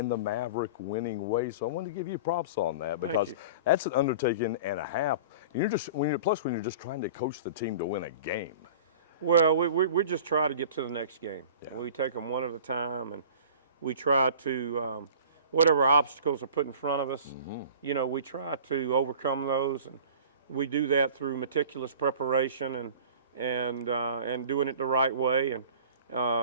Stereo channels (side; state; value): both; inverted; correlation -0.41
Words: the Maverick winning way. So I want to give you props on that, because that's an undertaking and a half. And you're just, when you're just trying to coach the team to win a game. Well, we just try to get to the next game. Yeah. We take them one at a time, and we try to, whatever obstacles are put in front of us, you know, we try to overcome those, and we do that through meticulous preparation and doing it the right way. And